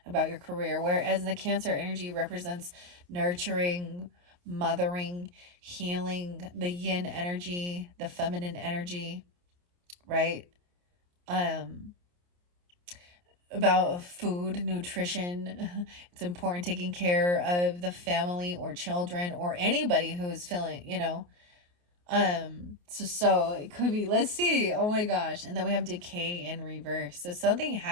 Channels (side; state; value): left; late; 28 ms